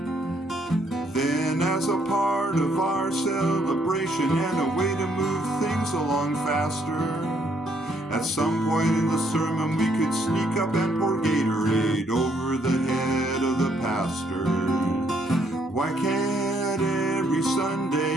Then, as a part of our celebration and a way to move things along faster, at some point in the sermon we could sneak up and pour Gatorade over the head of the pastor. Why can't every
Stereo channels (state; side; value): normal; both; correlation 0.70